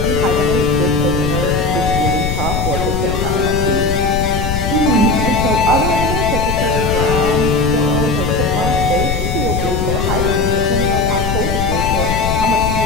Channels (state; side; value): noise; left; rumble, 2 dB below the sound